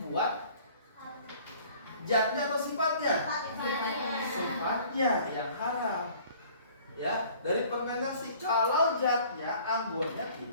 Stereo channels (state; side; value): inverted; both; correlation -0.52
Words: zatnya atau sifatnya? Sifatnya yang haram. Ya, dari fermentasi. Kalau zatnya anggurnya